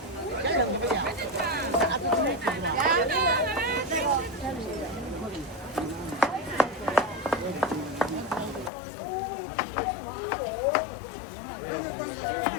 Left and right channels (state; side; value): drops out; right; at 8.7 s